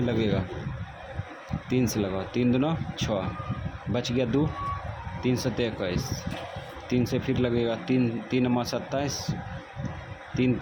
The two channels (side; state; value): both; identical; correlation 1.00